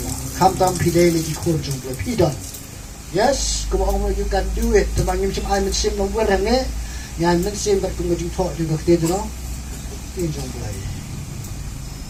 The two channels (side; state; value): both; identical; correlation 1.00